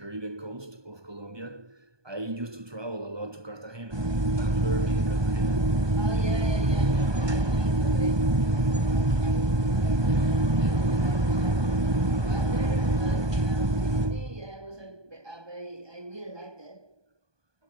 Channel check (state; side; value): late; left; 1.2 ms